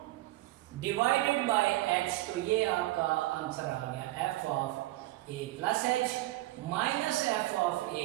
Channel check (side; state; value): left; quieter; 17.6 dB